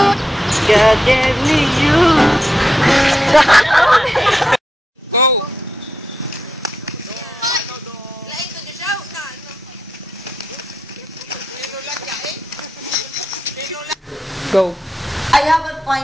God gave me you. Go. I have a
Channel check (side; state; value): both; normal; correlation 0.85